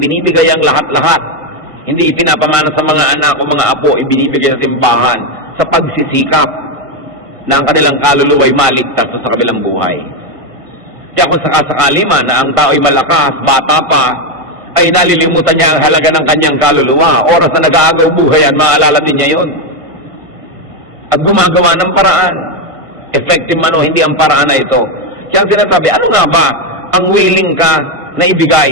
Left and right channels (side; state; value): left; late; 1.5 ms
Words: ang lahat-lahat. Hindi ipinapamana sa mga anak o mga apo, ibinibigay sa simbahan sa pagsisikap na ang kanilang kaluluwa ay maligtas sa kabilang buhay. Kaya kung sakasakali man na ang tao ay malakas, bata pa, ay nalilimutan niya ang halaga ng kanyang kaluluwa. Oras na nag-aagaw buhay yan, maalala din niya yun. At gumagawa ng paraan. Effective man o hindi ang paraan na ito. Kaya ang sinasabi, ano nga ba ang willing ka na ibigay